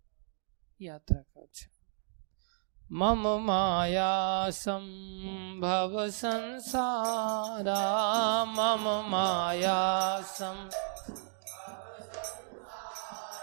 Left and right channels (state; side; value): silent; left; digital silence